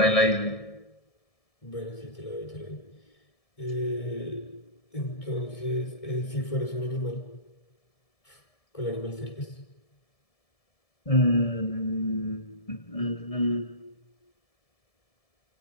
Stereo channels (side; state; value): right; late; 1.7 ms